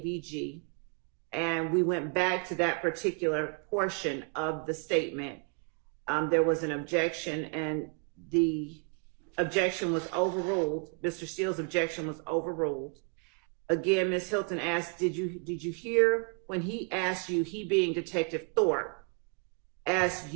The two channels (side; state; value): left; quieter; 37.9 dB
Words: And we went back to that particular portion of the statement. There was an objection, and the objection was overruled. Mr. Steele's objection was overruled. Again, Ms. Hilton asked, did you hear when he asked you, he being Detective Thorpe, asked